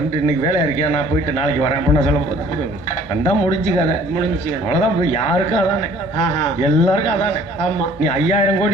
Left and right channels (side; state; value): both; normal; correlation 0.54